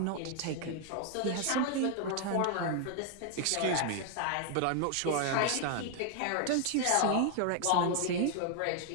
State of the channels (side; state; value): both; different; correlation 0.00